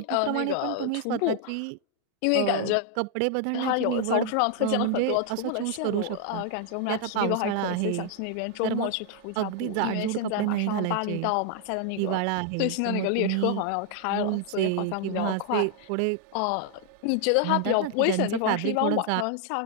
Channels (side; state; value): both; different; correlation 0.00